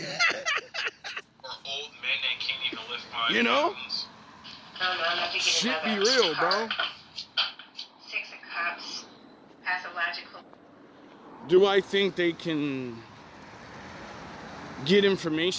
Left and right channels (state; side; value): identical; both; correlation 1.00